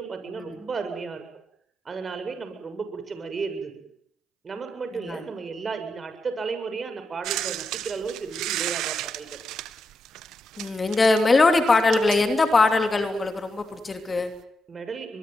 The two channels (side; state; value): both; normal; correlation 0.85